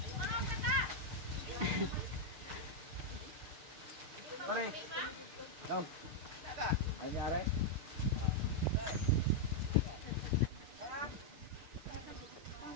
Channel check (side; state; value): left; late; 6.7 ms